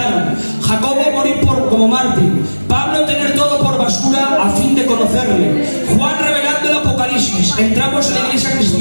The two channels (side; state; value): both; inverted; correlation -1.00